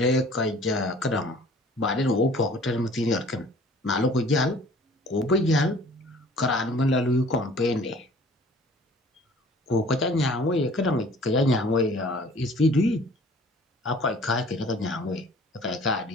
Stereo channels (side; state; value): both; normal; correlation 0.51